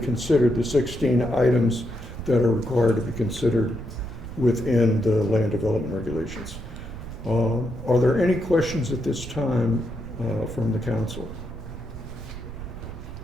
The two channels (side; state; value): right; noise; rumble, 11 dB below the sound